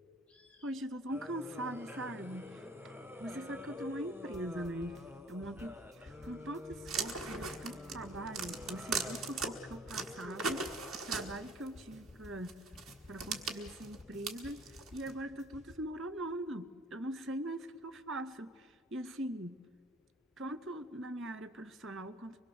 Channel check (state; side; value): normal; both; correlation 0.54